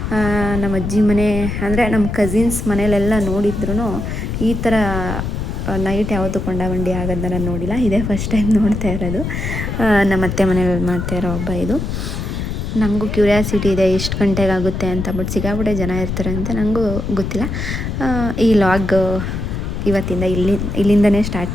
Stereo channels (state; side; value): noise; left; rumble, 4 dB below the sound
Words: ನಮ್ಮ ಅಜ್ಜಿ ಮನೆ ಅಂದರೆ ನಮ್ಮ ಕಸಿನ್ಸ್ ಮನೇಲೆಲ್ಲ ನೋಡಿದ್ರು ಈ ಥರ ನೈಟ್ ಯಾವತ್ತೂ ಕೊಂಡ ಬಂಡಿ ಆಗೋದನ್ನ ನಾನು ನೋಡಿಲ್ಲ. ಇದೇ ಫಸ್ಟ್ ಟೈಮ್ ನೋಡ್ತಾ ಇರೋದು. ನಮ್ಮ ಅತ್ತೆ ಮನೇಲಿ ಮಾಡ್ತಾ ಇರೋ ಹಬ್ಬ ಇದು. ನನಗೂ ಕ್ಯೂರಿಯಾಸಿಟಿ ಇದೆ ಎಷ್ಟು ಗಂಟೆಗೆ ಆಗುತ್ತೆ ಅಂತ, ಬಟ್ ಸಿಕ್ಕಾಪಟ್ಟೆ ಜನ ಇರ್ತಾರೆ ಅಂತ ನನಗೂ ಗೊತ್ತಿಲ್ಲ. ಈ ಲಾಗ್ ಇವತ್ತಿಂದ ಇಲ್ಲಿಂದನೇ ಸ್ಟಾರ್ಟ್